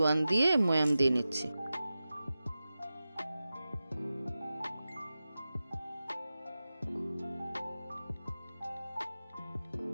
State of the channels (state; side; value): inverted; both; correlation -0.94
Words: দিয়ে ময়াম দিয়ে নিচ্ছি।